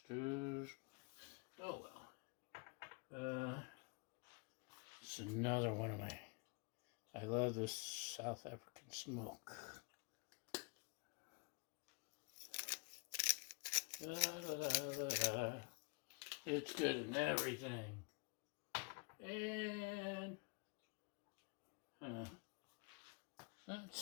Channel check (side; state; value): right; quieter; 31.6 dB